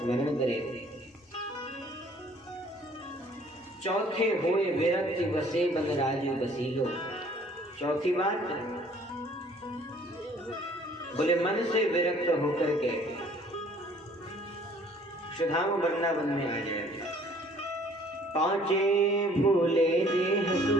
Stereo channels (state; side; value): normal; both; correlation 0.56